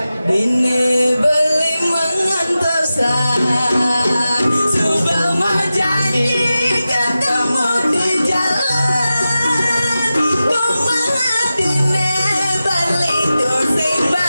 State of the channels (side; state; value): both; inverted; correlation -0.94